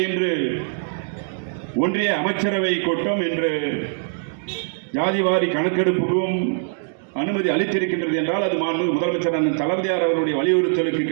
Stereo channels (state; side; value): silent; left; digital silence